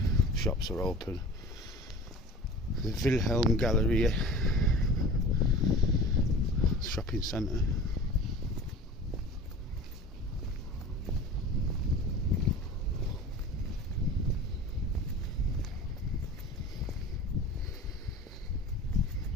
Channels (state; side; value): normal; both; correlation 0.39